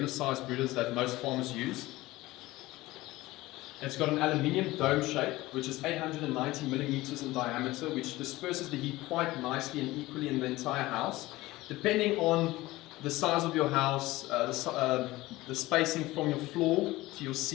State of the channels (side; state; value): right; quieter; 18.6 dB